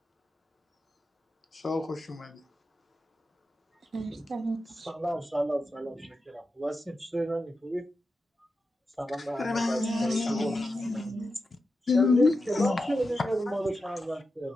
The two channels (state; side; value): normal; both; correlation 0.90